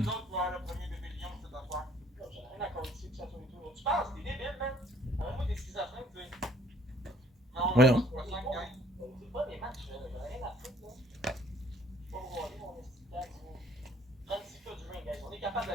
autres qui vont avoir le premier bébé lion, cette affaire. J'ai rien à compter que ça soit et tout. Tu penses, t'es débile, man? Envoie-moi des schizophrènes, tu sais. Non, Voyons. c'est pas 5 guys. C'est pas des matchs, là. J'ai rien à foutre, là. Je peux pas regarder mon esti tag, là. 36 cas du ring, guys. On est capable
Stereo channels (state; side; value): normal; both; correlation 0.59